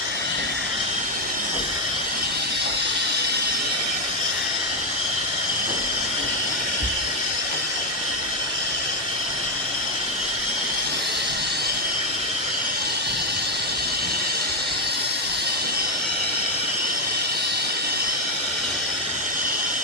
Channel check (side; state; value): both; normal; correlation 0.07